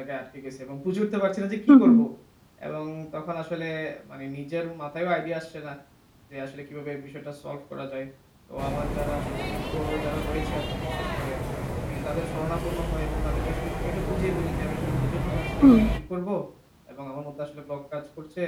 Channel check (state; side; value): identical; both; correlation 1.00